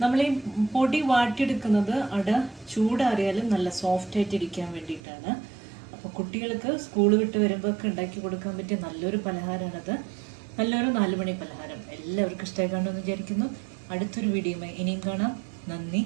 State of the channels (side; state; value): left; drops out; at 5.0 s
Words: നമ്മൾ ഈ പൊടി വാട്ടിയെടുക്കുന്നത് അട ചൂടാറിയാലും നല്ല സോഫ്റ്റ് ആയിട്ട് ഇരിക്കാൻ വേണ്ടിയിട്ടാണ്. അപ്പോൾ കുട്ടികൾക്ക് സ്കൂൾ വിട്ട് വരുമ്പോൾ ഒക്കെ ഉണ്ടാക്കി കൊടുക്കാൻ പറ്റിയ നല്ലൊരു പലഹാരമാണത്. നല്ലൊരു 4 മണി പലഹാരം. എല്ലാവർക്കും ഇഷ്ടമായി കാണുമെന്ന് വിചാരിക്കുന്നു. അടുത്തൊരു വീഡിയോയുമായി ഇനിയും കാണാം. നന്ദി,